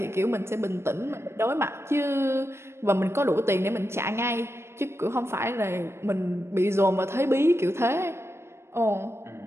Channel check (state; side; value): late; left; 0.12 ms